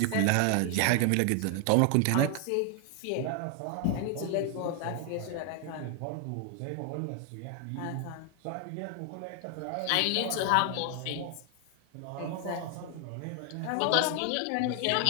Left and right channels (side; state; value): both; different; correlation 0.00